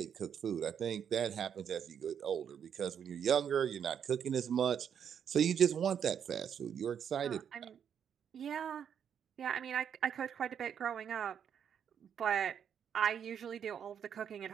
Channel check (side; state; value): left; quieter; 8.2 dB